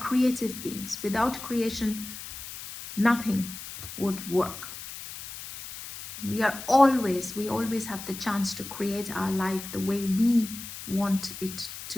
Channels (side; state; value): left; noise; hiss, 11 dB below the sound